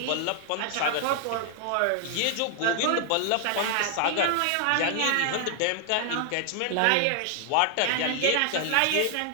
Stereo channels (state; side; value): different; both; correlation 0.00